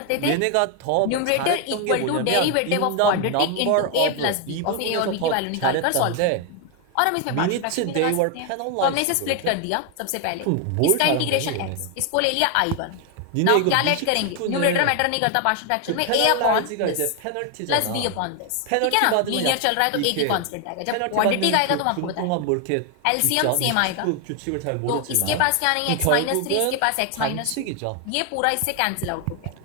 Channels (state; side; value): different; both; correlation 0.01